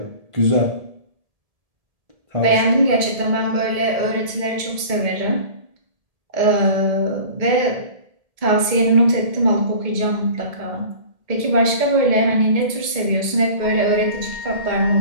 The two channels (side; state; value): left; late; 1.7 ms